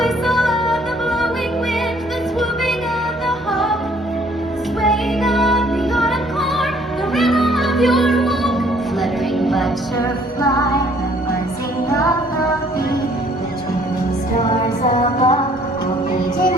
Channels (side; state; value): both; normal; correlation 0.60